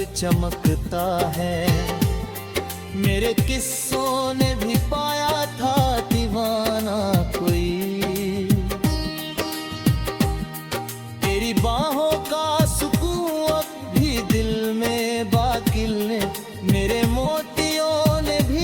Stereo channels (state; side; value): identical; both; correlation 1.00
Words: चमकता है, मेरे किस्सों ने भी पाया था दीवाना कोई। तेरी बाहों का सुकून अब भी दिल में बाकी है, मेरे मोतियों ने